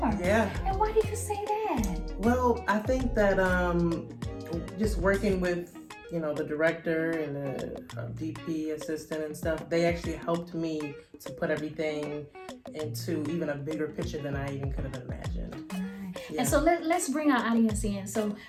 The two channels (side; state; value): both; identical; correlation 1.00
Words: Yeah. And why did you say that? Well, I think that just working with, the director and the DP assistant and stuff, they actually helped me to put everything into even a bigger picture than I even could have imagined. Yeah. And so let's bring our audience in. So